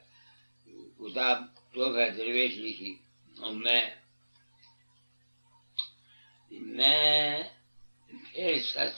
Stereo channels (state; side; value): inverted; both; correlation -1.00